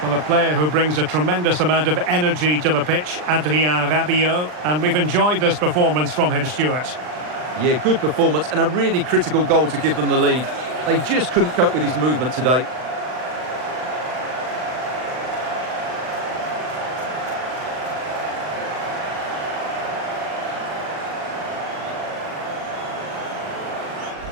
Well, a player who brings a tremendous amount of energy to the pitch, Adrien Rabiot, and we've enjoyed this performance from him, Stuart. Yeah, good performance and a really critical goal to give them the lead. They just couldn't cope with his movement today.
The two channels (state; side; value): late; left; 39 ms